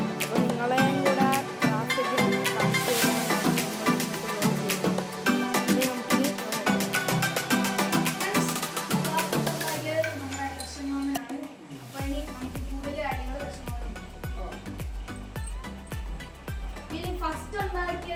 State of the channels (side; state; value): both; identical; correlation 1.00